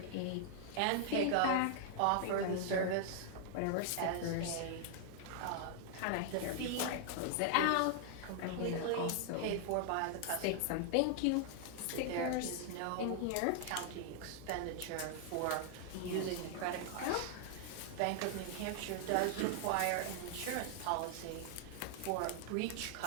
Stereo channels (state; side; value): different; both; correlation 0.00